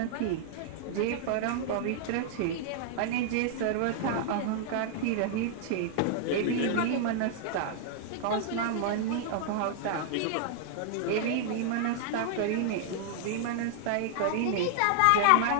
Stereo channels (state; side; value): different; both; correlation -0.01